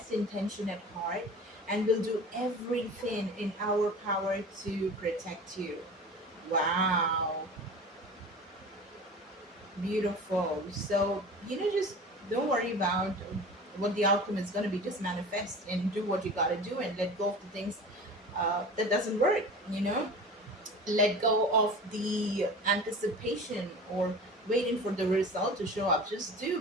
intention at heart, and will do everything in our power to protect you. Wow, beautiful. So, just don't worry about what the outcome is going to be. Just manifest and do what you got to do, and let go of the things that doesn't work. Let go of the anticipation or waiting for the result to show up. Just do,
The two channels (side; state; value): both; normal; correlation 0.37